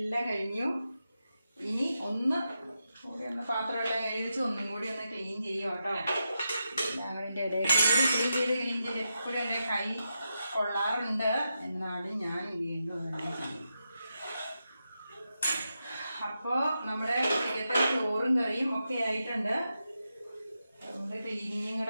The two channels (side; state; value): both; inverted; correlation -0.87